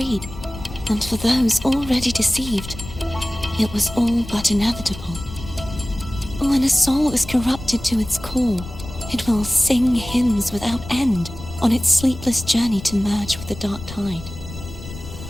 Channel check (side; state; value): left; noise; rumble, 13 dB below the sound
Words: and for those already deceived, it was all but inevitable. When a soul is corrupted to its core, it will sing hymns without end on its sleepless journey to merge with the dark tide.